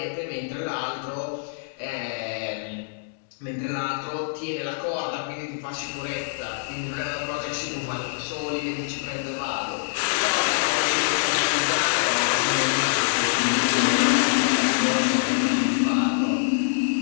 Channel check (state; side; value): silent; right; digital silence